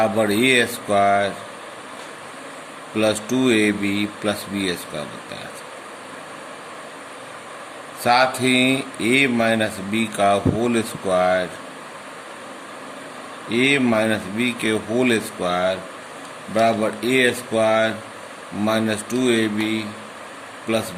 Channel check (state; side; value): identical; both; correlation 1.00